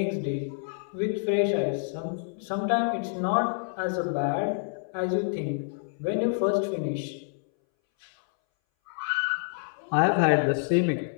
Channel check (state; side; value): silent; right; 60 dB below the other